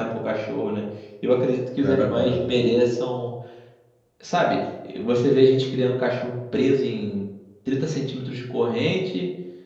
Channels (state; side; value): identical; both; correlation 1.00